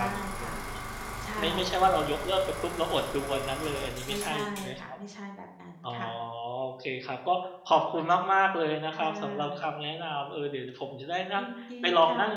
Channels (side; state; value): both; identical; correlation 1.00